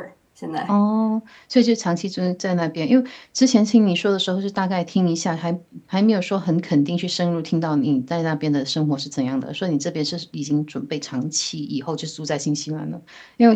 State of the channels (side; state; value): both; identical; correlation 1.00